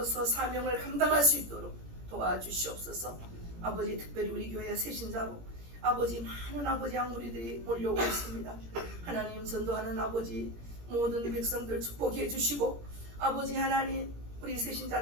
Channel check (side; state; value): left; late; 17 ms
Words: 사명을 감당할 수 있도록 도와주시옵소서. 아버지 특별히 우리 교회 새신자로 아버지 많은 아버지 양무리들이 몰려오고 있습니다. 하나님 전도하는 아버지 모든 백성들 축복해 주시고 아버지 하나님 우리